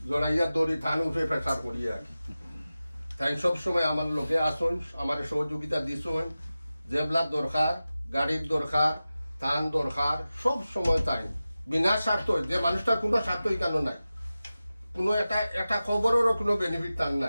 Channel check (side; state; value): both; inverted; correlation -0.95